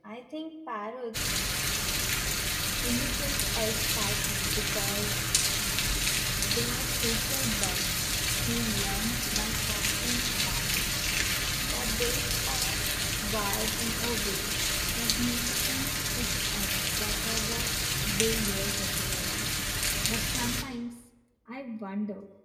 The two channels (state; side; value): identical; both; correlation 1.00